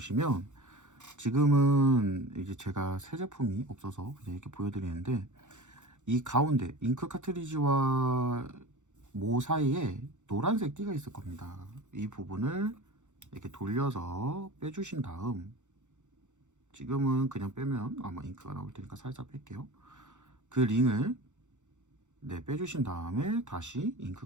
지금은 이제 제가 새 제품이 없어서 그냥 이렇게 보여드리는데, 이 가운데 잉크 카트리지와 모 사이에 노란색 띠가 있을 겁니다. 이 부분을 이렇게 돌려서 빼주신 다음, 지금은 그냥 빼면 아마 잉크가 나올 테니까 살짝 뺄게요. 그 링을 빼주신 다음에 다시 잉크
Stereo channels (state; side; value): late; left; 0.85 ms